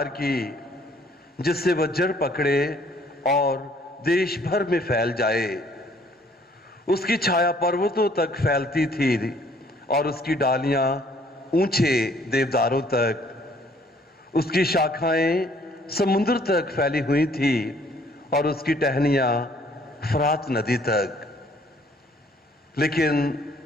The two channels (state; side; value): normal; both; correlation 0.61